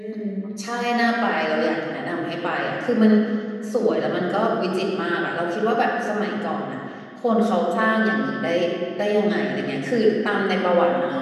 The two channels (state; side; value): identical; both; correlation 1.00